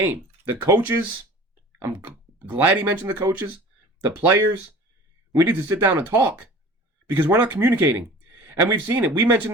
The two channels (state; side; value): normal; both; correlation 0.42